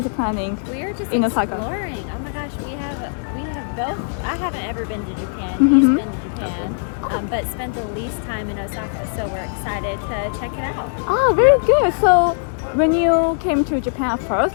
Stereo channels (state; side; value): silent; right; digital silence